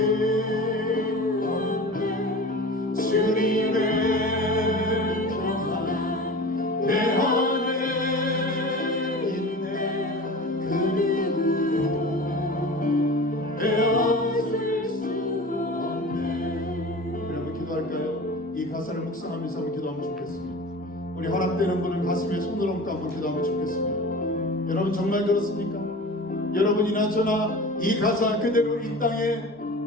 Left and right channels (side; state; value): both; normal; correlation 0.35